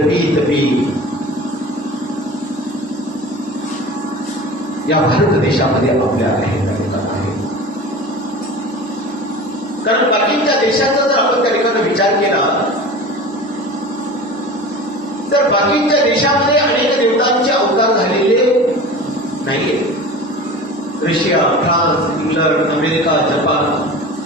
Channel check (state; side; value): normal; both; correlation 0.35